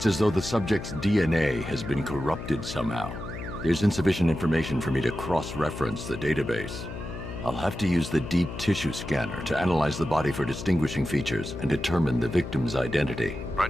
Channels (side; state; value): left; noise; hum, 9 dB below the sound